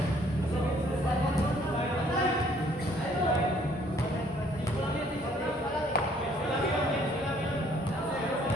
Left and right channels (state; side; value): normal; both; correlation 0.61